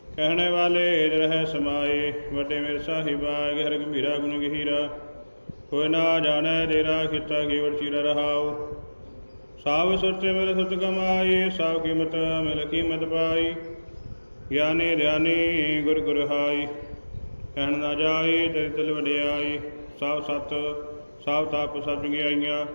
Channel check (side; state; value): both; inverted; correlation -1.00